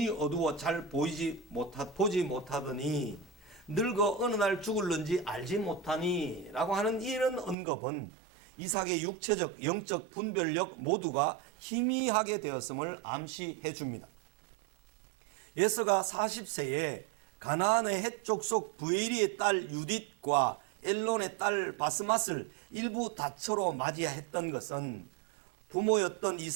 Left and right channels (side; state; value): left; drops out; at 7.6 s